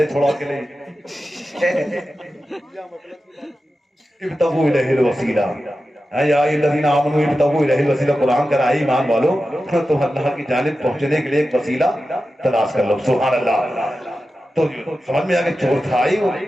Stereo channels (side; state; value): both; normal; correlation 0.92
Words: چھوڑا کے لے ابتغوا الیہ الوسیلہ۔ یا الذین آمنوا ابتغوا الیہ الوسیلہ، قرآن کا ہے ایمان والو تم اللہ کی جانب پہنچنے کے لیے ایک وسیلہ تلاش کر لو. سبحان اللہ. تو سمجھ میں آ کہ چور تھا ہی وہ.